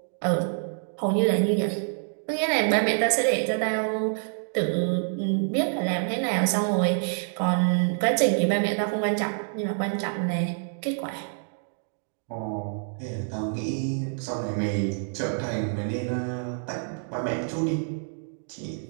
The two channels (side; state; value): left; silent; digital silence